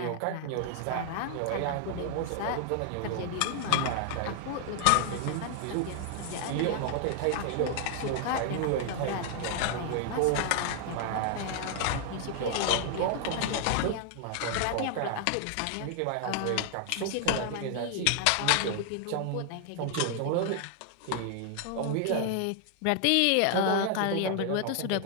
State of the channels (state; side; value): different; both; correlation 0.00